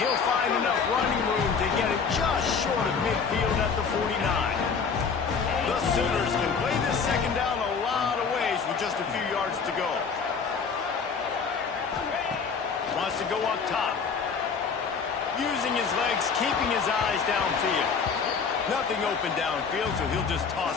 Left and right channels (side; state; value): right; quieter; 5.7 dB